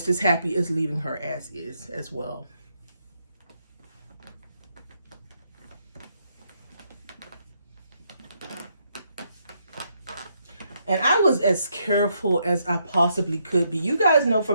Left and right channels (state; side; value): inverted; both; correlation -0.76